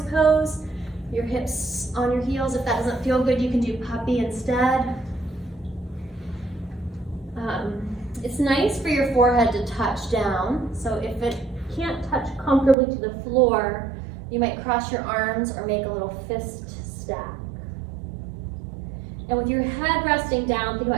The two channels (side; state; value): left; drops out; at 12.8 s